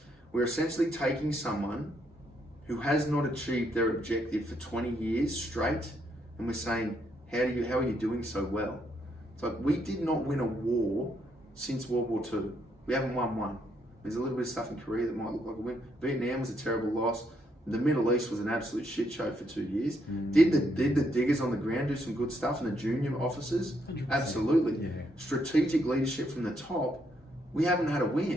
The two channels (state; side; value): normal; both; correlation 0.75